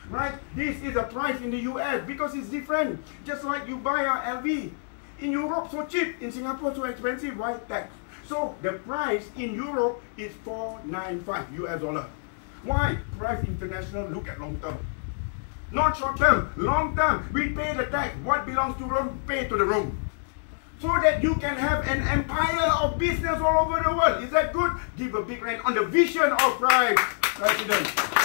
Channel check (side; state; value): right; silent; digital silence